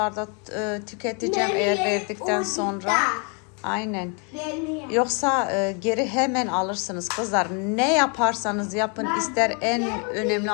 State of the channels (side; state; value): right; quieter; 36.2 dB